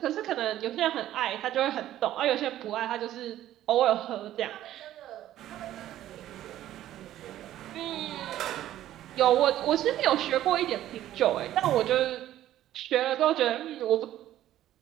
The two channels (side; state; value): left; quieter; 13.0 dB